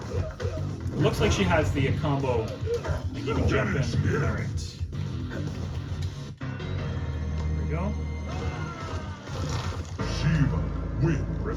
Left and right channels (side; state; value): both; identical; correlation 1.00